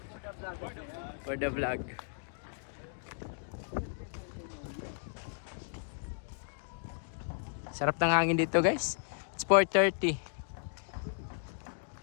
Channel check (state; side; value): silent; right; digital silence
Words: For the vlog. Sarap ng hangin dito guys. It's 4:30.